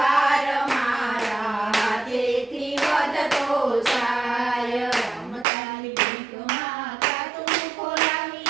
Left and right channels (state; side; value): drops out; left; at 5.5 s